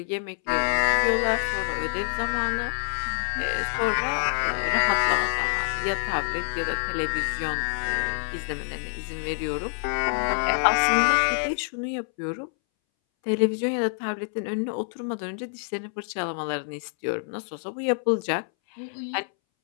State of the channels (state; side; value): silent; right; 61 dB below the other